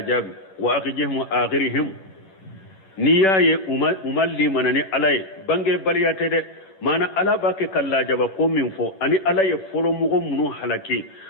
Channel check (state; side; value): late; right; 11 ms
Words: وأخجهم آخرهم نياي أمالي مناني علي بانجي بليات دي مانا على باكي كالله جابا قوم من فو أني علي فلو مغو منو حلقي